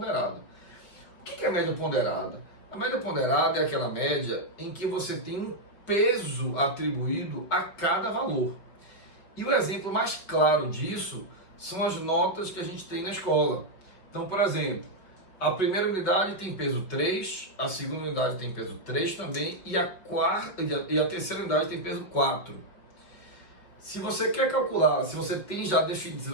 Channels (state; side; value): late; right; 5.3 ms